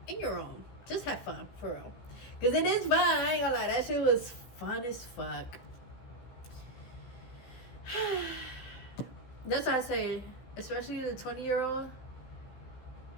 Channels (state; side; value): late; right; 15 ms